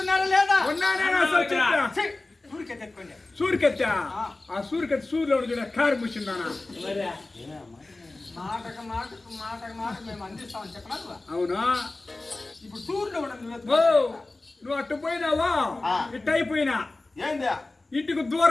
లేదా ఉన్నానేనా సంశయం? ఊరికే తెచ్చుకోండి సూరికెత్తా ఆ సూరికెత్తి సూర్యులో చూడ కారు ముచ్చిందానా మాటకు మేము అందిస్తామని చెప్పనా నువ్వు? అవునా ఇప్పుడు టూర్లో ఉండదు ఓ నువ్వు అట్టు పోయినావా ఇట్టు అయిపోయినా ఏందా ఇంటికి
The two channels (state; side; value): quieter; right; 3.1 dB